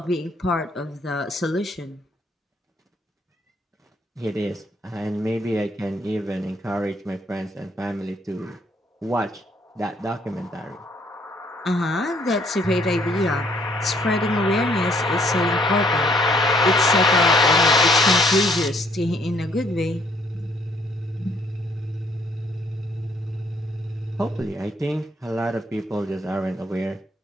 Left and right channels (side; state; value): both; normal; correlation 0.65